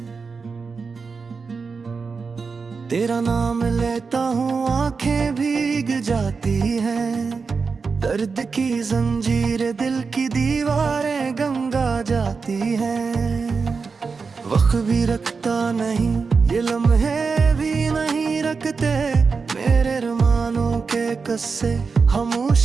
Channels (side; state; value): left; quieter; 4.9 dB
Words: तेरा नाम लेता हूँ आंखें भीग जाती हैं, दर्द की जंजीर दिल की दीवारें गंगा जाती हैं। वक्त भी रखता नहीं ये लम्हे भी नहीं रखते, मेरे अरमानों के कस्से